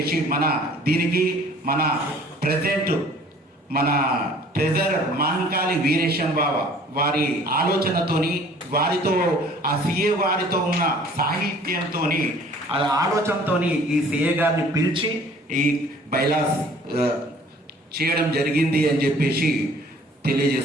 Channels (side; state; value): both; normal; correlation 0.53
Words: దీనికి మన ప్రెసిడెంట్ మన ట్రెజరర్ మహంకాళి వీరేశం బాబా వారి ఆలోచనతోని, వారితో ఆ సిఏ వారితో ఉన్న సాహిత్యంతో, ఆలోచనతో ఈ సిఏ గారిని పిలిచి ఈ బైలాస్ చేయడం జరిగింది అని చెప్పేసి